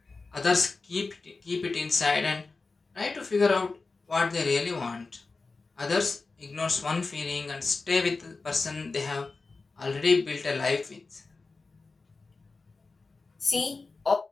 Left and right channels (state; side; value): quieter; right; 3.9 dB